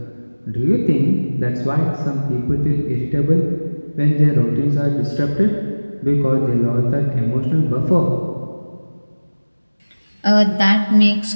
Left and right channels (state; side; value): inverted; both; correlation -1.00